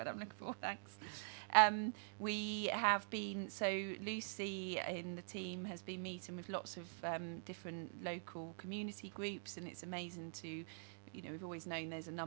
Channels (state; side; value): silent; left; digital silence